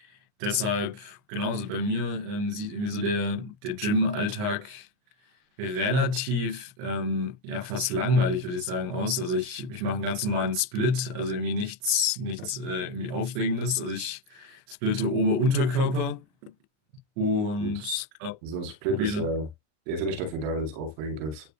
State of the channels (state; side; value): late; left; 39 ms